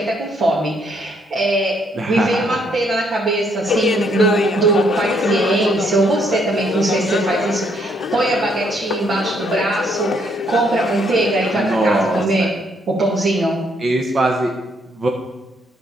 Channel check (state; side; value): normal; both; correlation 0.70